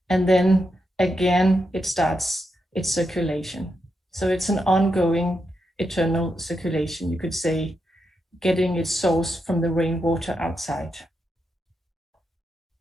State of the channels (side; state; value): both; normal; correlation 0.84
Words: And then again, it starts its circulation. So it's an ongoing, eternal circulation, you could say, getting its source from the rainwater outside.